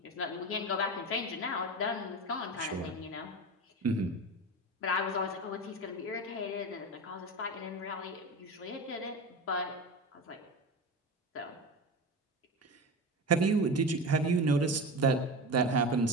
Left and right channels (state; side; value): normal; both; correlation 0.26